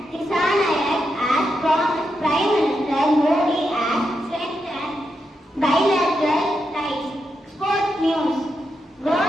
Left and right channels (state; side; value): normal; both; correlation 0.85